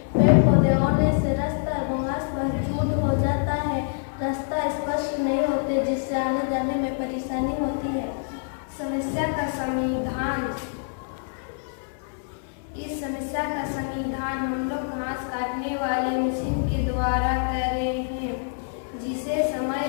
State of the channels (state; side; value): silent; right; 61 dB below the other